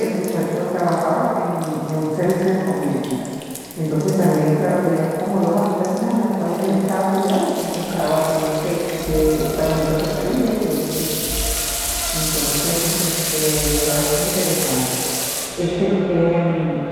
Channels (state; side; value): identical; both; correlation 1.00